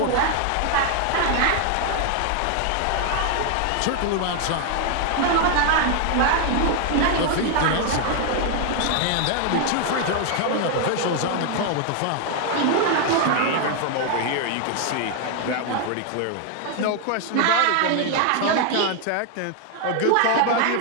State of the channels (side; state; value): both; different; correlation 0.00